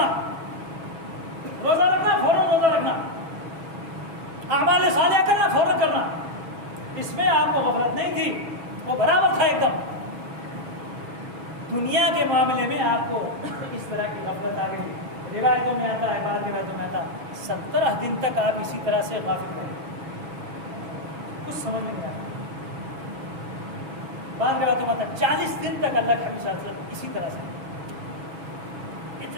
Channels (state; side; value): late; left; 6.2 ms